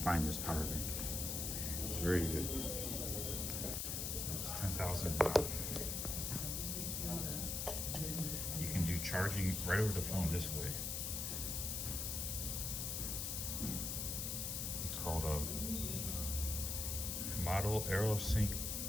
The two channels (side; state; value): left; noise; hiss, 1 dB below the sound